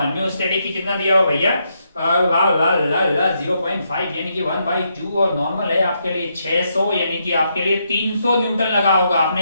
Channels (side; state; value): both; inverted; correlation -0.79